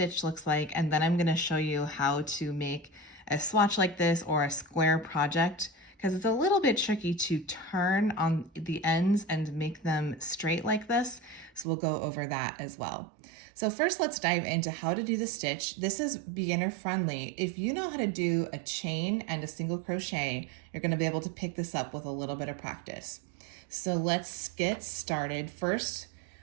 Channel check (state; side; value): drops out; left; at 11.7 s